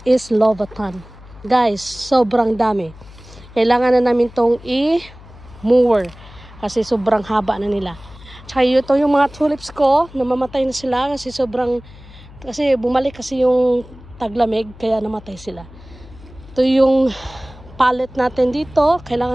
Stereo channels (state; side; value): noise; left; hum, 20 dB below the sound